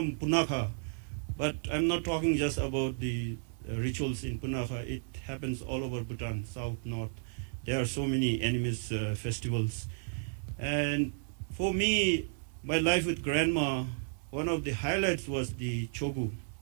Punakha, but I'm not talking just about the rituals in Punakha. It happens all over Bhutan, south, north. There are so many animist festivals. And for me, my life with grandma, one of the highlights was the chogu.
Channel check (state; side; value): silent; left; digital silence